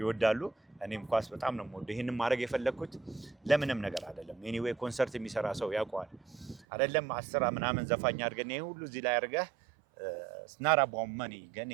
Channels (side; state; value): left; drops out; at 6.7 s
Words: እኔም ኳስ በጣም ነው የምወደው። ይሄንን ማድረግ የፈለኩት ለምንም ነገር አይደለም። ኤኒዌይ ኮንሰርት የሚሰራ ሰው ያውቀዋል አይደለም 10 ምናምን ዘፋኝ አድርገን ይሄ ሁሉ እዚህ ላይ አድርገህ ስናራ ቦመኒ ግን